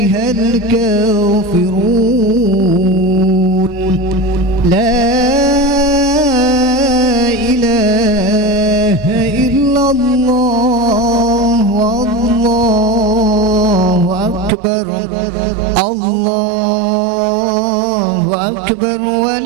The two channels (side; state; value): left; drops out; at 14.5 s